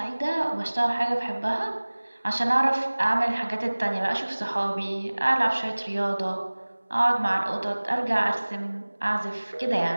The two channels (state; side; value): inverted; both; correlation -1.00